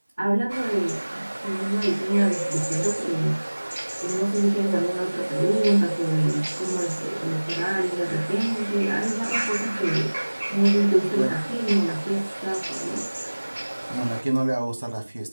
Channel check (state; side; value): inverted; both; correlation -1.00